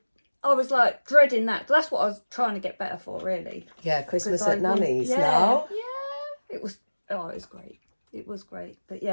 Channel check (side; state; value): both; inverted; correlation -1.00